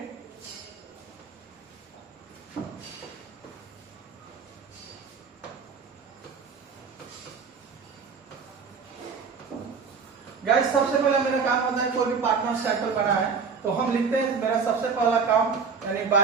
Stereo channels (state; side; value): quieter; left; 5.6 dB